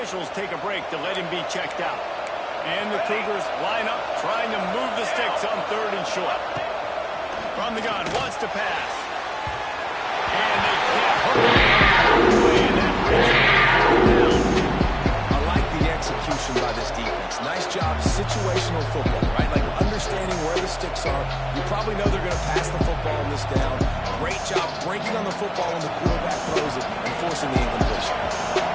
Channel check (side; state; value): both; identical; correlation 1.00